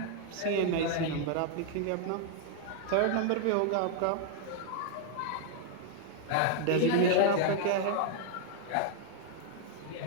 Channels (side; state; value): both; different; correlation 0.00